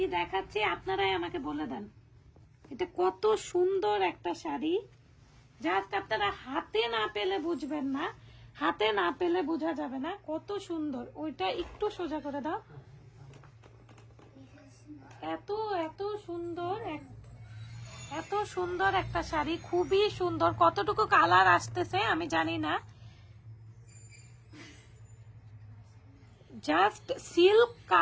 দেখাচ্ছি আপনারাই আমাকে বলে দেন। এটা কত সুন্দর একটা শাড়ি, জাস্ট আপনারা হাতে না পেলে বুঝবেন না, হাতে না পেলে বোঝা যাবে না কত সুন্দর। ওইটা একটু সোজা করে দাও। এত এত সুন্দর, এত সুন্দর একটা শাড়ি, খুবই সুন্দর। কতটুকু কালার আসতেছে আমি জানি না, জাস্ট সিল্ক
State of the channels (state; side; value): identical; both; correlation 1.00